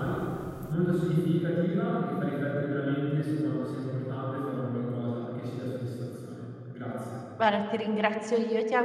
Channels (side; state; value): both; identical; correlation 1.00